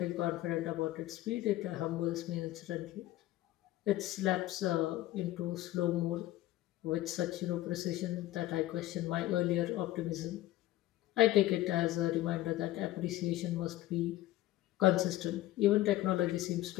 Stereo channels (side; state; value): right; quieter; 15.6 dB